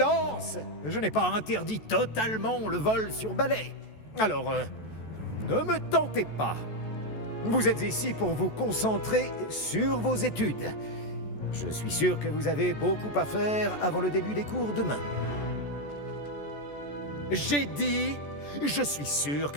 Je n'ai pas interdit totalement le vol sur balai. Alors, ne me tentez pas. Vous êtes ici pour vous concentrer sur vos études. Je suis sûr que vous avez beaucoup à faire avant le début des cours demain. J'ai dit, je suis sûr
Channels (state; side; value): late; right; 14 ms